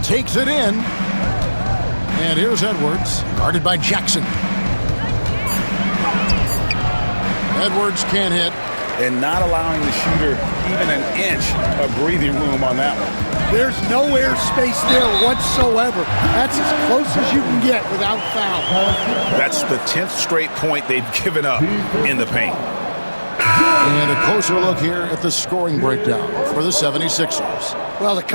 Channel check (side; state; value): both; inverted; correlation -1.00